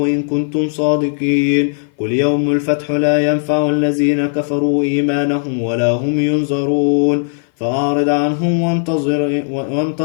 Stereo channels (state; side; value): silent; right; 57 dB below the other